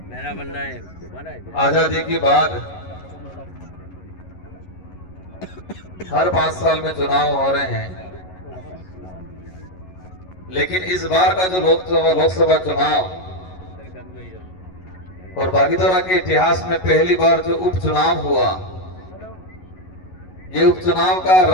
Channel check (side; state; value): right; late; 11 ms